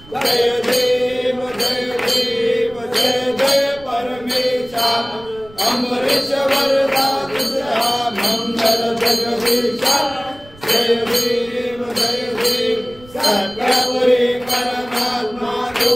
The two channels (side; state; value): right; noise; rumble, 23 dB below the sound